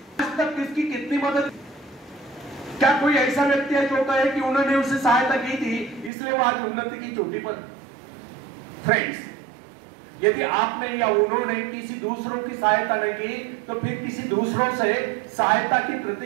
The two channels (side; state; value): left; drops out; at 6.1 s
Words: आज तक किसकी कितनी मदद. क्या कोई ऐसा व्यक्ति है जो कहता है कि उन्होंने उसे सहायता की थी इसलिए वो आज उन्नति की चोटी पर? फ्रेंड्स, यदि आपने या उन्होंने किसी दूसरों की सहायता नहीं की तो फिर किसी दूसरों से सहायता की